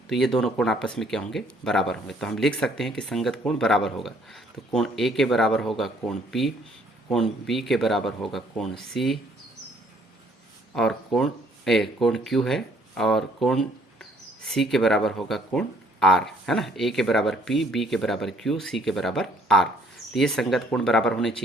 तो ये दोनों कोण आपस में क्या होंगे, बराबर होंगे। तो हम लिख सकते हैं कि संगत कोण बराबर होगा। तो कोण A के बराबर होगा कोण P, कोण B के बराबर होगा कोण C, और कोण Q है, और कोण C के बराबर होगा कोण R, है ना। A के बराबर P, B के बराबर Q, C के बराबर R। तो ये संगत कोण बराबर होने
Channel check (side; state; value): both; normal; correlation 0.63